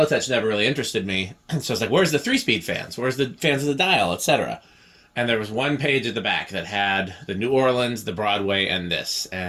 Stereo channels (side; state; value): both; identical; correlation 1.00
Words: never really interested me. And so I was like, where's the 3-speed fans? Where's the fans of the dial, etc.? And there was one page at the back that had the New Orleans, the Broadway, and this.